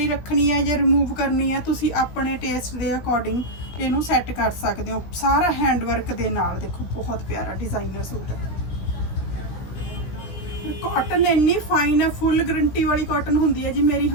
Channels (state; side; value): late; right; 17 ms